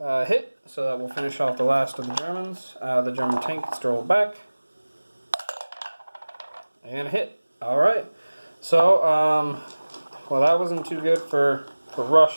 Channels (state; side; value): inverted; both; correlation -1.00